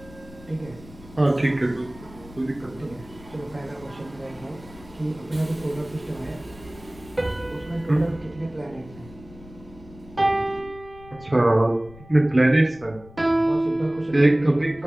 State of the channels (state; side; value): noise; left; rumble, 20 dB below the sound